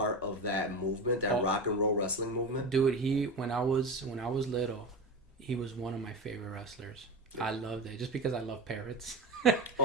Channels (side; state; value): both; normal; correlation 0.24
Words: of that movement, that rock and roll wrestling movement. Dude, when I was little, he was one of my favorite wrestlers. I loved it just because I love parrots.